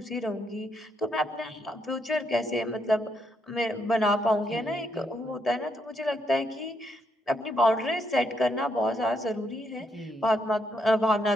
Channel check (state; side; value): normal; both; correlation 0.77